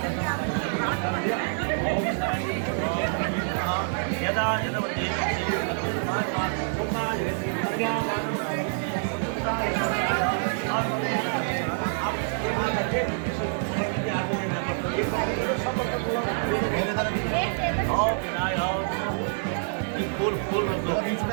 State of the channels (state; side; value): silent; left; 60 dB below the other